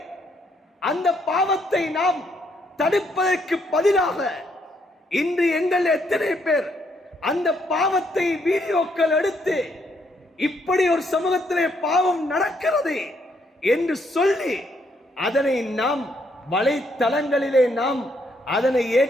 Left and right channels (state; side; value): normal; both; correlation 0.72